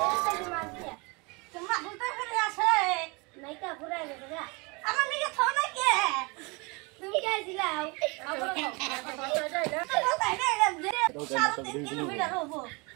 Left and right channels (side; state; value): left; quieter; 28.3 dB